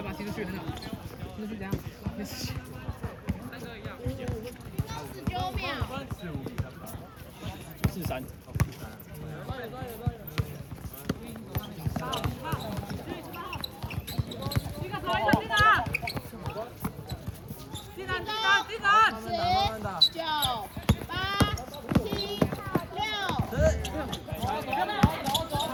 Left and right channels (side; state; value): both; identical; correlation 1.00